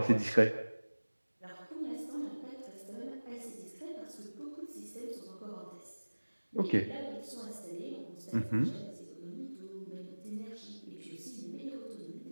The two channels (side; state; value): both; inverted; correlation -1.00